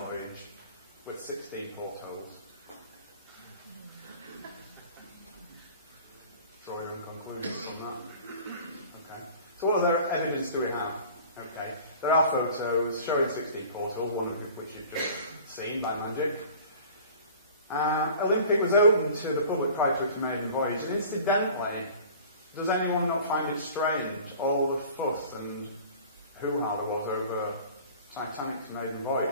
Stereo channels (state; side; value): inverted; both; correlation -0.44